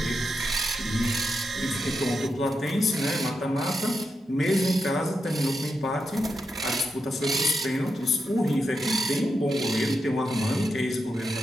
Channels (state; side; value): normal; both; correlation 0.86